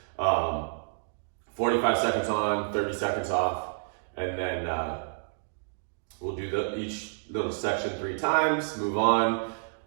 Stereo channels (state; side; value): silent; left; digital silence